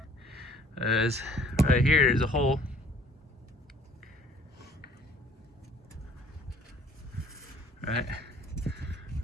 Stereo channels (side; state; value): both; normal; correlation 0.55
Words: is right here. There's a hole. Right